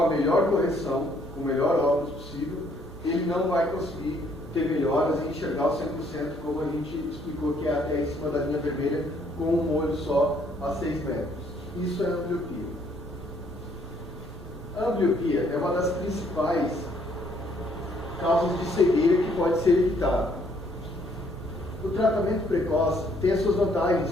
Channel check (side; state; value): both; normal; correlation 0.66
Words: melhor correção, com o melhor óculos possível, ele não vai conseguir ter melhoras e enxergar o 100%, como a gente explicou, que é até em cima da linha vermelha, com um olho só a 6 metros. Isso é a ambliopia. A ambliopia é uma das principais causas de cegueira que pode ser evitada. O tratamento precoce tem as suas